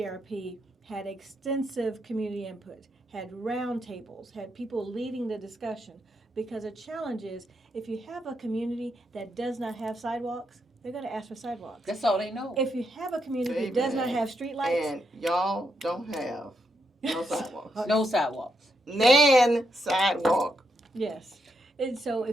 had extensive community input, had roundtables, had people leading the discussion. Because the challenge is, if you have a community that does not have sidewalks, they're going to ask for sidewalks. That's all they know. If you have a community that does not have streetlights. And y'all don't have no sidewalks. No sidewalks. Nan sidewalk. Yes. And so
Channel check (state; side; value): normal; both; correlation 0.80